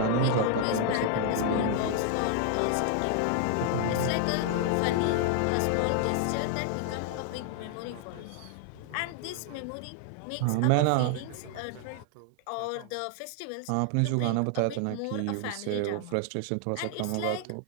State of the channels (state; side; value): different; both; correlation 0.00